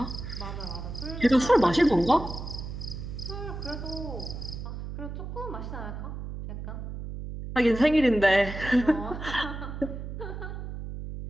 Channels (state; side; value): noise; right; hum, 8 dB below the sound